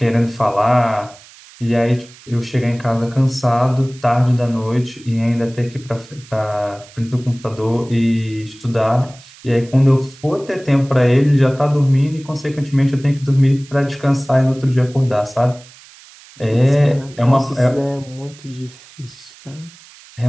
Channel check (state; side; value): noise; right; hiss, 23 dB below the sound